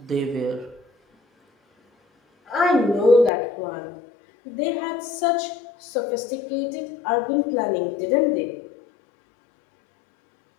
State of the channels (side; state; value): right; drops out; at 3.3 s